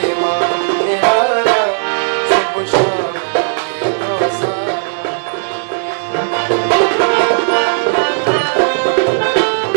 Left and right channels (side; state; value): left; silent; digital silence